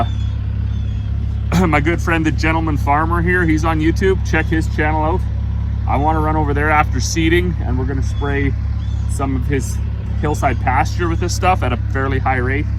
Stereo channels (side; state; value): both; identical; correlation 1.00